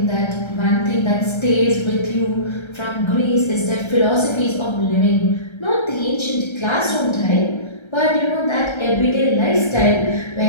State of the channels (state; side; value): late; right; 1.3 ms